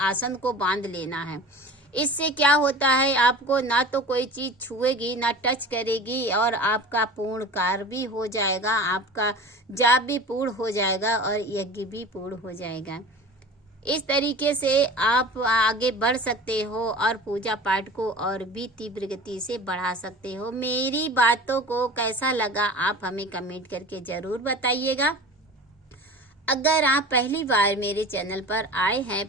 को बांध लेना है। इससे क्या होता है, आपको ना तो कोई चीज़ छुएगी ना टच करेगी और आपका पूर्ण कार्य भी हो जाएगा, आपका जाप भी पूर्ण हो जाएगा और यज्ञ भी पूर्ण हो जाएगा। इस तरीके से आप आगे बढ़ सकते हो और पूजा पाठ को और भी तीव्र गति से बढ़ा सकते हो। मेरी बातों को कैसा लगा आप हमें कमेंट करके ज़रूर बताइएगा। अगर आप पहली बार मेरे चैनल पर आए हैं,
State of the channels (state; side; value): normal; both; correlation 0.38